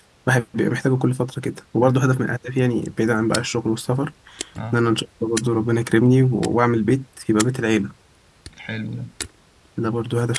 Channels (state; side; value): identical; both; correlation 1.00